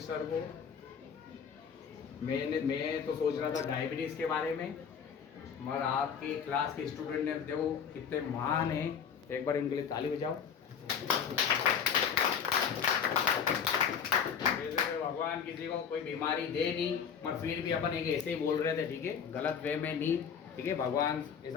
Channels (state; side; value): quieter; right; 7.3 dB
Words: सर को मैं तो सोच रहा था डायबिटीज के बारे में, मगर आपकी क्लास के स्टूडेंट ने देखो कितने महान हैं, एक बार इनके लिए ताली बजाओ। वैसे भगवान किसी को कोई बीमारी दे नहीं, मगर फिर भी अपन एक ऐसे ही बोल रहे थे, ठीक है, गलत वे में नहीं, ठीक है। भगवान